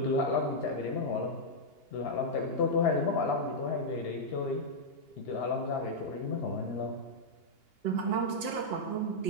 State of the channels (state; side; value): late; right; 2.8 ms